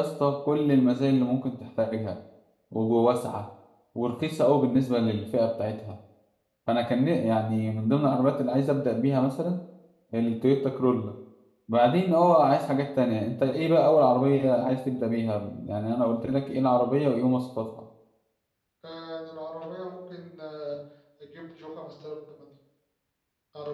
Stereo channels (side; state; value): both; identical; correlation 1.00